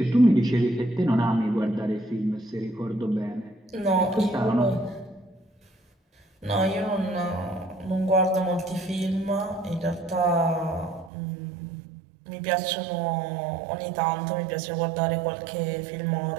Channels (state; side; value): drops out; left; at 11.1 s